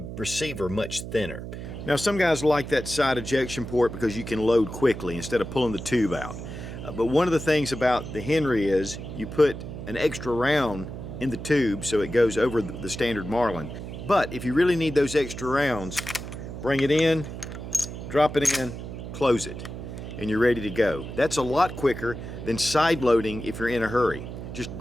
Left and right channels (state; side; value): noise; right; hum, 9 dB below the sound